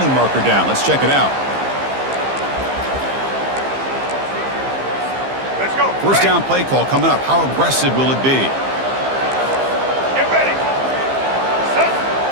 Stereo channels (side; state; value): left; late; 15 ms